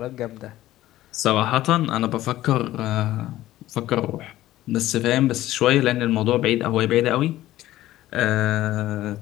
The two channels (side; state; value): right; quieter; 15.0 dB